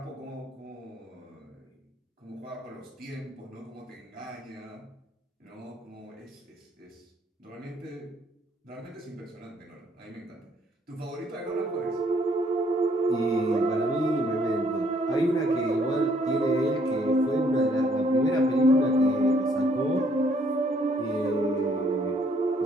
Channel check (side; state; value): both; normal; correlation 0.66